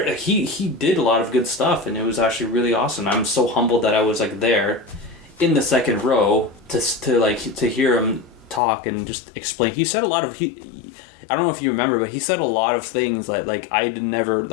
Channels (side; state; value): right; drops out; at 8.6 s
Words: He did a lot of good stuff, and it was actually really awesome. I'm so humbled that I was like there, in the second row to hear him talk and just explain. He said a lot of I don't know if you remember, but he said a lot of things that like I never